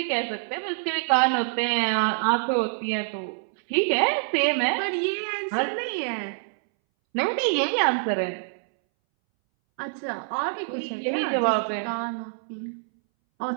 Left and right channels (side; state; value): left; silent; 61 dB below the other